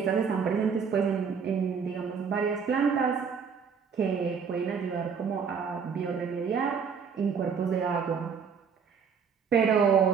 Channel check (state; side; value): quieter; left; 6.3 dB